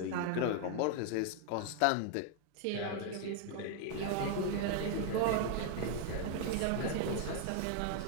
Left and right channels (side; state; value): both; different; correlation 0.00